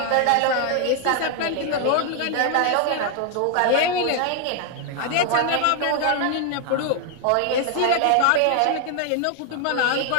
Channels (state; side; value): different; both; correlation 0.00